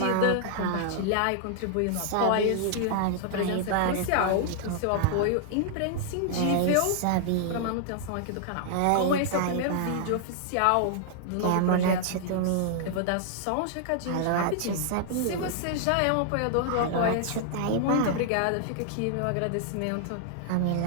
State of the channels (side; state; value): both; different; correlation -0.01